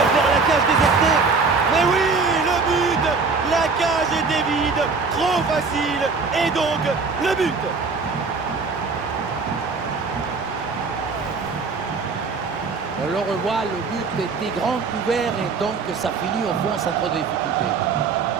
vers la cage désertée. Mais oui! La cage était vide, trop facile, et donc le but. On le revoit, le but était grand ouvert et donc ça finit au fond sans trop de difficultés.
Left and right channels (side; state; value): left; quieter; 4.6 dB